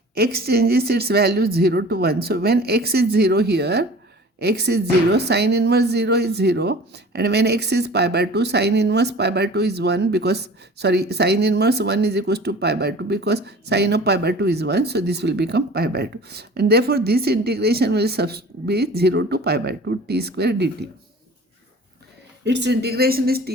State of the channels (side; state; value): both; normal; correlation 0.43